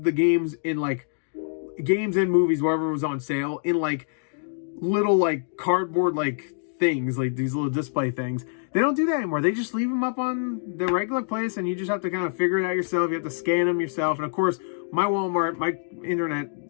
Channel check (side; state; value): right; silent; digital silence